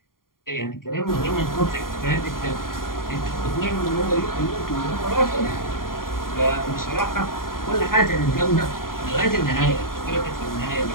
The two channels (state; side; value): late; right; 0.91 ms